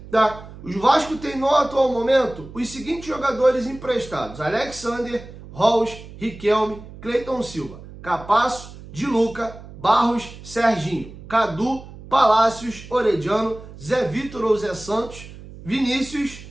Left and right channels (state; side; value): noise; right; hum, 16 dB below the sound